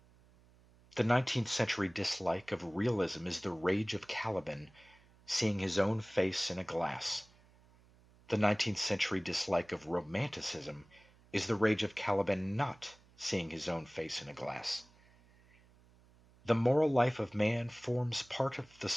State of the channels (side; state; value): right; noise; hum, 28 dB below the sound